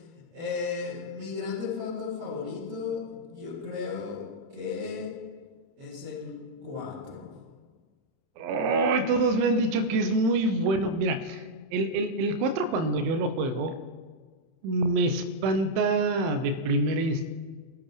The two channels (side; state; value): left; late; 30 ms